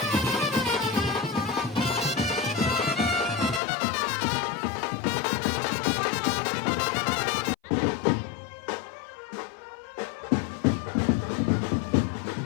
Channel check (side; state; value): right; drops out; at 3.6 s